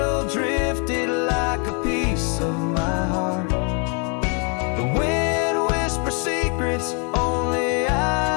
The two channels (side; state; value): right; quieter; 36.6 dB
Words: drifted like a piece of my heart. The wind whispers secrets only